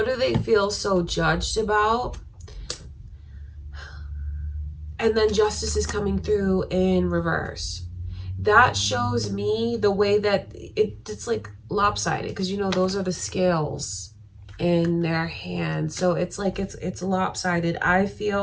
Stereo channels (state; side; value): identical; both; correlation 1.00